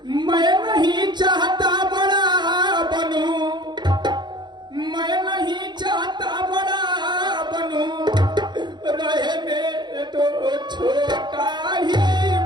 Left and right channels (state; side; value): late; left; 0.21 ms